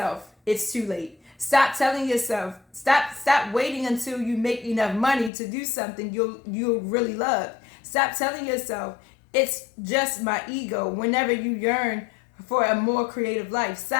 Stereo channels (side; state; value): right; drops out; at 5.3 s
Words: it's too late. Stop telling yourself. Stop waiting until you make enough money to do something you'll really love. Stop telling yourself it's just my ego whenever you yearn for a more creative life.